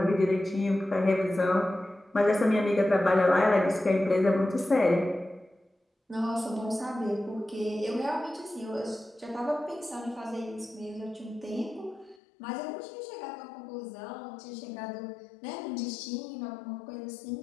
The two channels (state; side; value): drops out; right; at 12.2 s